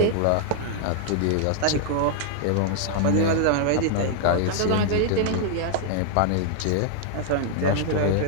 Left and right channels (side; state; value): both; different; correlation 0.00